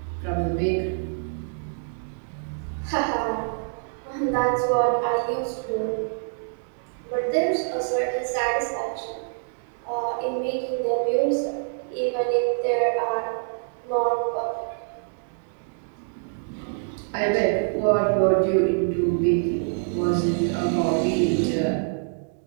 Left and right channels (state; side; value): silent; left; digital silence